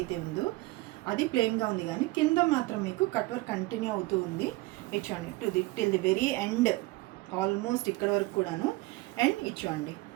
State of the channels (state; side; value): quieter; left; 20.6 dB